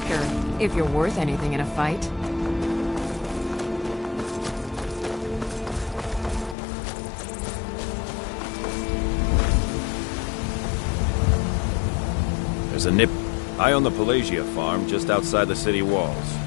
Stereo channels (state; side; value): drops out; right; at 6.6 s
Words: if you're worth anything in a fight. There's a nip. I own the Pelagia farm just outside the city walls.